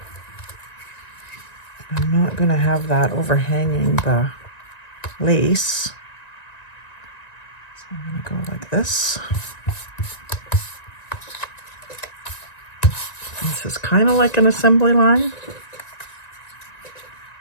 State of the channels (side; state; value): right; late; 1.9 ms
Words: I'm not going to have that overhanging the lace, so I'm going to go like this. This is kind of like an assembly line.